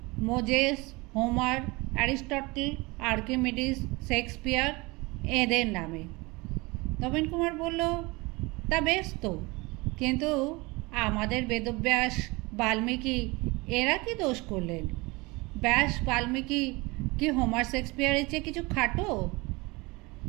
Moses, Homer, Aristotle, Archimedes, Shakespeare এদের নামে। নবীন কুমার বলল, তা বেশ তো, কিন্তু আমাদের বেদব্যাস, বাল্মীকি এরা কি দোষ করলেন? ব্যাস, বাল্মীকি কি হোমার, শেক্সপিয়ারের চেয়ে কিছু খাটো?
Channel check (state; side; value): quieter; left; 24.4 dB